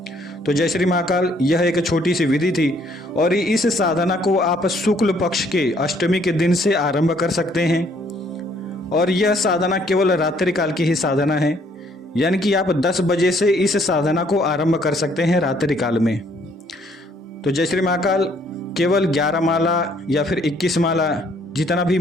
तो जय श्री महाकाल, यह एक छोटी सी विधि थी, और इस साधना को आप शुक्ल पक्ष के अष्टमी के दिन से आरंभ कर सकते हैं। और यह साधना केवल रात्रि काल की ही साधना है, यानी कि आप 10 बजे से इस साधना को आरंभ कर सकते हैं रात्रि काल में। तो जय श्री महाकाल, केवल 11 माला या फिर 21 माला जितना भी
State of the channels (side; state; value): both; normal; correlation 0.64